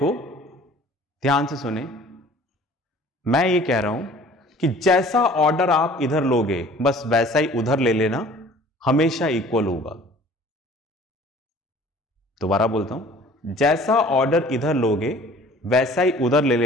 ध्यान से सुने, मैं ये कह रहा हूं कि जैसा ऑर्डर आप इधर लोगे बस वैसा ही उधर ले लेना, हमेशा इक्वल होगा। दोबारा बोलता हूं, जैसा ऑर्डर इधर लोगे वैसा ही उधर ले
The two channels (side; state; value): both; normal; correlation 0.49